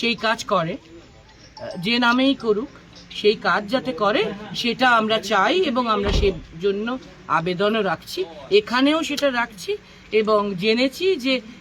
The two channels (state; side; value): identical; both; correlation 1.00